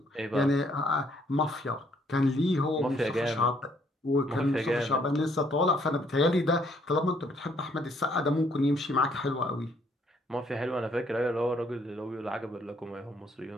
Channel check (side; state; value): both; normal; correlation 0.67